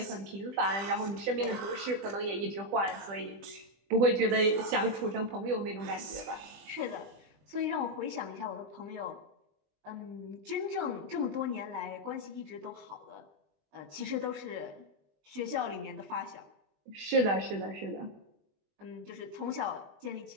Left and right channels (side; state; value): left; late; 20 ms